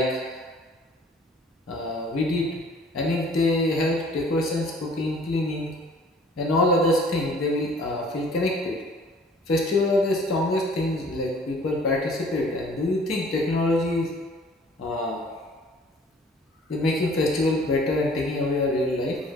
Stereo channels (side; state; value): both; normal; correlation 0.53